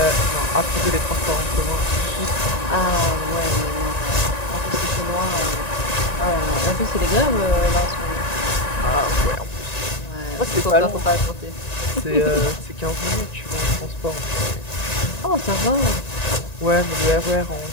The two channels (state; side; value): late; right; 1.9 ms